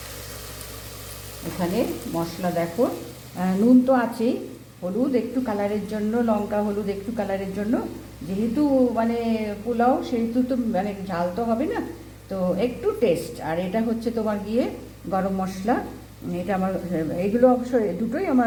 এখানে মশলা দেখো, নুন তো আছেই, হলুদ একটু কালারের জন্য, লঙ্কা হলুদ একটু কালারের জন্য, যেহেতু মানে পোলাও সেহেতু তো মানে ঝাল তো হবে না, তো একটু টেস্ট। আর এটা হচ্ছে তোমার গিয়ে গরম মশলা, এটা আমার, এগুলো অবশ্যই দুটোই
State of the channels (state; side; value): identical; both; correlation 1.00